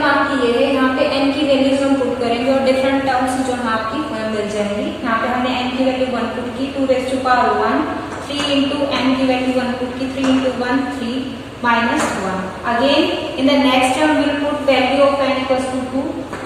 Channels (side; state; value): both; identical; correlation 1.00